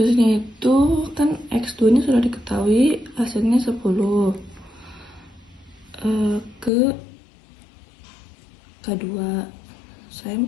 itu kan X2 nya sudah diketahui hasilnya 10 ke K2. Saya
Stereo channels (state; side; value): drops out; right; at 6.7 s